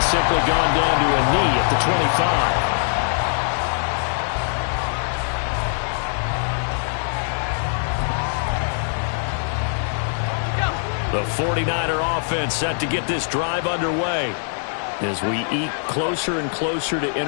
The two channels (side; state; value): right; silent; 63 dB below the other